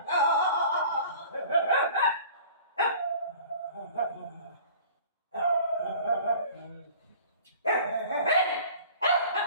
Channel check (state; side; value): inverted; both; correlation -0.45